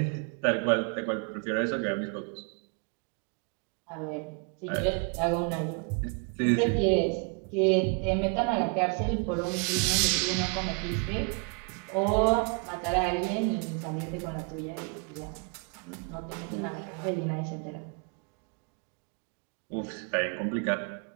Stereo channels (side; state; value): left; quieter; 35.5 dB